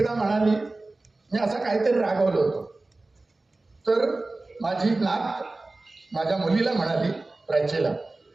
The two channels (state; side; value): quieter; left; 3.1 dB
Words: म्हणाली, मी असं काहीतरी रागवलं होतं, तर माझी नात माझ्या मुलीला म्हणाली, प्राचीला,